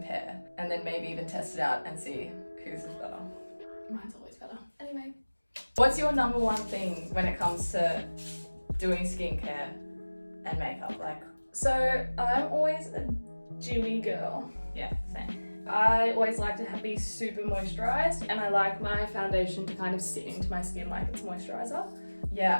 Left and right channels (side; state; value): both; inverted; correlation -1.00